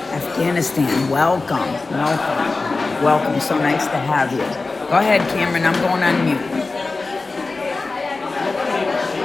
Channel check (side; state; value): right; quieter; 3.7 dB